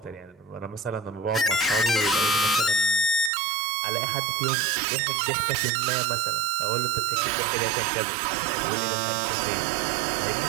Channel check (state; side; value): drops out; left; at 3.3 s